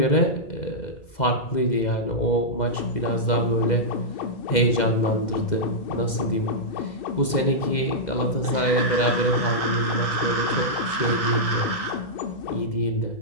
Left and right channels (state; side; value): late; right; 2.0 ms